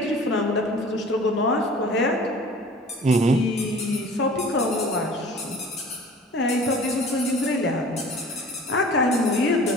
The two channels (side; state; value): both; normal; correlation 0.45